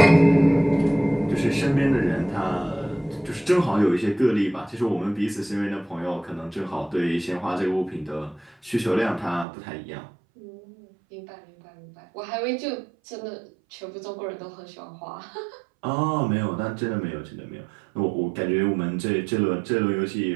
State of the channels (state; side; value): drops out; left; at 9.5 s